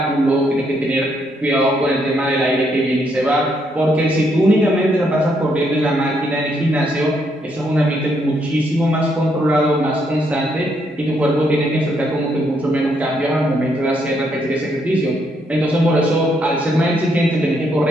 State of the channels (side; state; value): both; normal; correlation 0.74